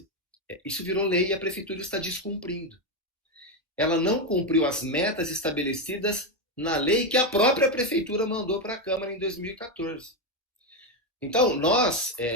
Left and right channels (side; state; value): both; normal; correlation 0.08